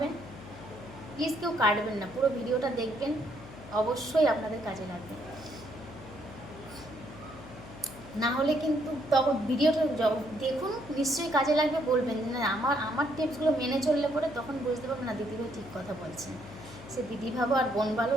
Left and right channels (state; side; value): noise; left; hum, 16 dB below the sound